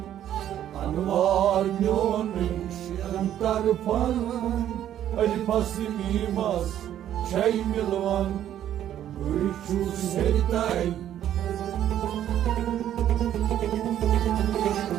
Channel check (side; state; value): left; quieter; 11.1 dB